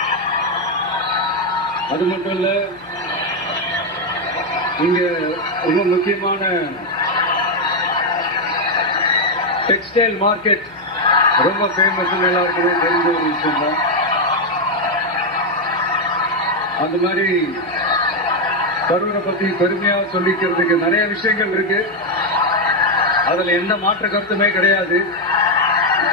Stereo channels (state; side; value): noise; left; hum, 26 dB below the sound